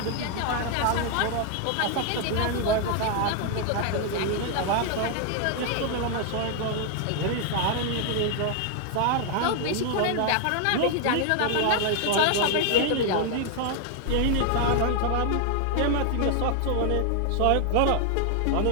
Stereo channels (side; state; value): both; different; correlation 0.00